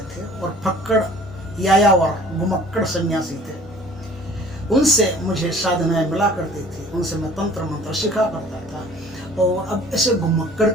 थे और फक्कड़ यायावर घुमक्कड़ सन्यासी थे। उनसे मुझे साधनाएं मिला करती थी, उनसे मैं तंत्र मंत्र सीखा करता था। और अब ऐसे घुमक्कड़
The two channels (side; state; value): both; normal; correlation 0.50